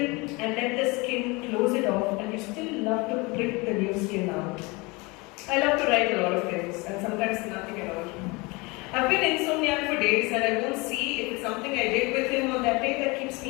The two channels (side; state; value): right; quieter; 25.9 dB